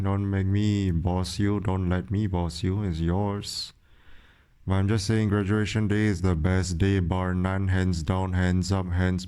Don't make me boss you. Don't let me boss you. It's yours. But I'm just saying graduation day is the best day, bar none, hands down, hands up, hands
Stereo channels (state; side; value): identical; both; correlation 1.00